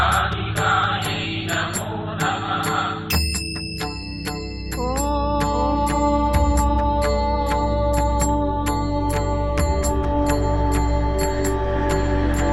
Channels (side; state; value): both; identical; correlation 1.00